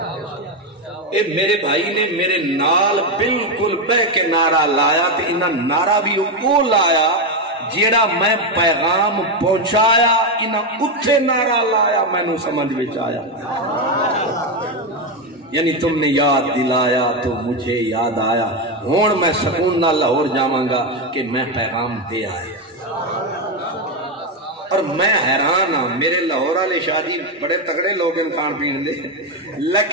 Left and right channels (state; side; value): normal; both; correlation 0.09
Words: اے میرے بھائی نے میرے نال بالکل بہ کے نعرہ لایا تے انہاں نعرہ بھی وہ لایا جیڑا میں پیغام پہنچایا انہاں اتھے نعرہ لایا میں نو سمجھ وچ آیا یعنی تم نے یاد دلایا تو مجھے یاد آیا ہون میں سکون نہ لاہور جاواں گا کہ میں پیغام دے آیا اور میں حیران ہاں میرے لاہور والے شادی بڑے تگڑے لوگ ان کھان پین دے